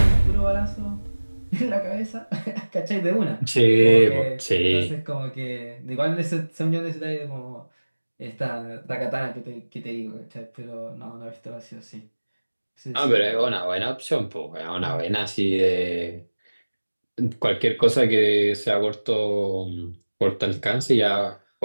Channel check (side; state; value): both; inverted; correlation -1.00